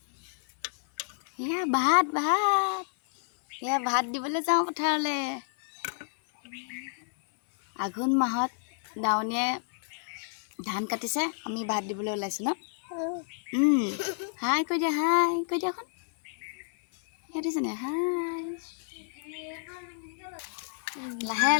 ভাত দিবলৈ যাওঁ পথাৰলৈ। আঘোণ মাহত দাৱনীয়ে ধান কাটিছে, আমি ভাত দিবলৈ ওলাইছোঁ ন। হাই কৈ দিয়া, হাই কৈ দিয়া এখন দিছেনে। হাই লাহে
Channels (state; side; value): silent; right; 56 dB below the other